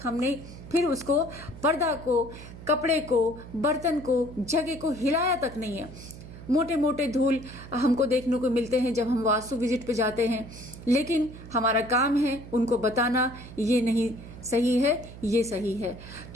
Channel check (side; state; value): right; noise; hum, 15 dB below the sound